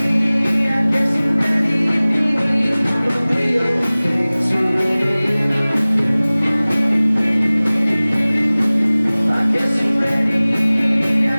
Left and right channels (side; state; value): both; inverted; correlation -0.99